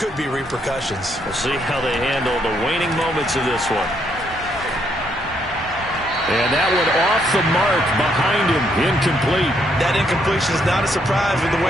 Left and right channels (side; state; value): both; normal; correlation 0.73